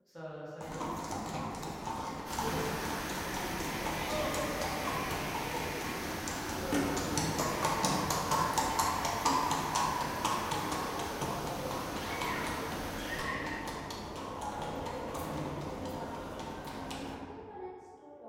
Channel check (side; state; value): both; identical; correlation 1.00